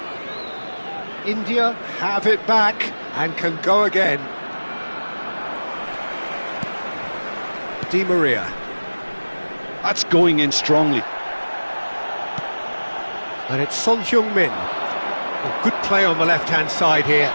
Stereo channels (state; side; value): inverted; both; correlation -1.00